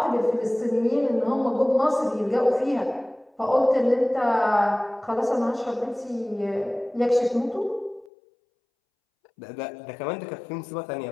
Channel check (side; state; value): right; drops out; at 8.1 s